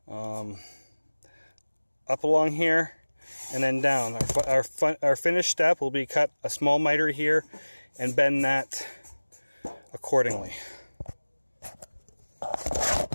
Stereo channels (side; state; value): both; inverted; correlation -1.00